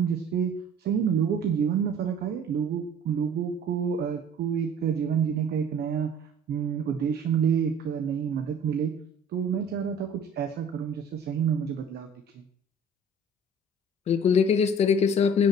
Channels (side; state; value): both; normal; correlation 0.48